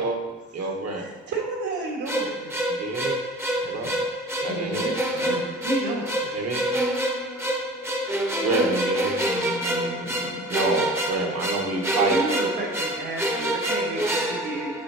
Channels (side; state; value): both; normal; correlation 0.40